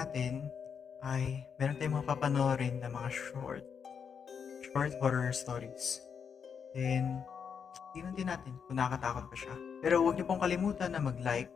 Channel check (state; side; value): quieter; right; 6.8 dB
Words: ay meron tayong mga papanoorin na mga short horror stories. Then, tingnan din natin kung nakakatakot pa siya. Pero huwag niyo pong kalimutan na mag-like,